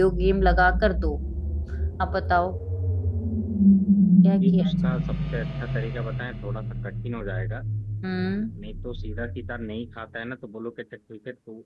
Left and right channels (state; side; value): identical; both; correlation 1.00